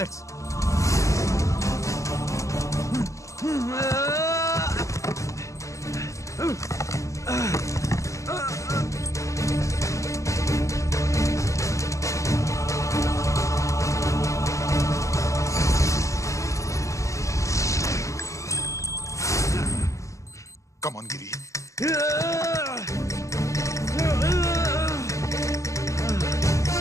Come on, Giri.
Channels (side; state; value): right; late; 0.15 ms